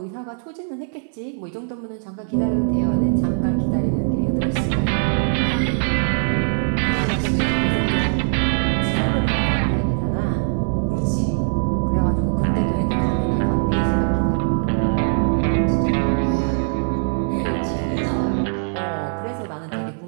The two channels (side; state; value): left; silent; digital silence